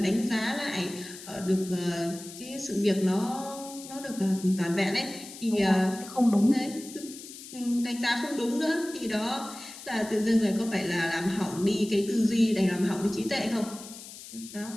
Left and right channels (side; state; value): left; noise; hiss, 14 dB below the sound